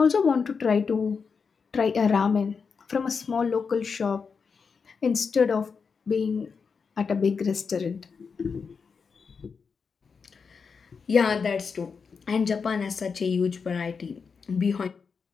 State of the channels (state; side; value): quieter; right; 5.5 dB